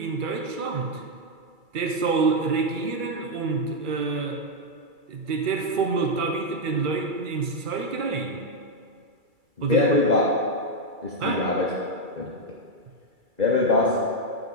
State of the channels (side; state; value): left; late; 2.3 ms